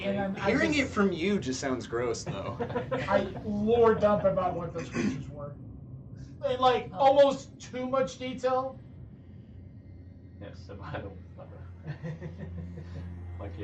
eloquently. and Hearing it from you just sounds gross, though. I lore dump about what those creatures were. In like almost too much detail. Yes, so I don't. My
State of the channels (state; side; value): identical; both; correlation 1.00